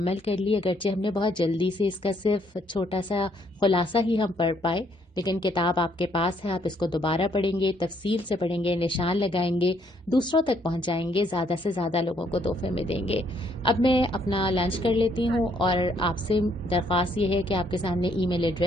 کر لی، اگرچہ ہم نے بہت جلدی سے اس کا صرف چھوٹا سا خلاصہ ہی ہم پڑھ پائے، لیکن کتاب آپ کے پاس ہے. آپ اس کو دوبارہ پڑھیں گے، تفصیل سے پڑھیں گے، نشان لگائیں گے، دوسروں تک پہنچائیں گے، زیادہ سے زیادہ لوگوں کو تحفے میں دیں گے. اب میں اپنا لنچ کر لیتی ہوں، اور آپ سے درخواست یہ ہے کہ آپ کے سامنے ای میل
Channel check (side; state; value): both; normal; correlation 0.69